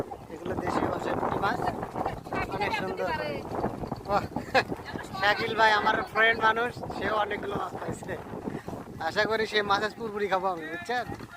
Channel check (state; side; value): identical; both; correlation 1.00